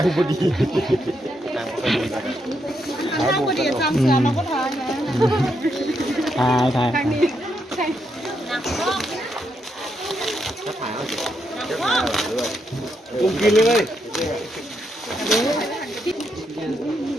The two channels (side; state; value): both; normal; correlation 0.80